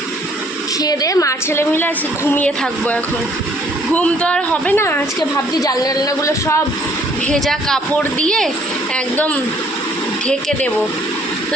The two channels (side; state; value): both; normal; correlation 0.61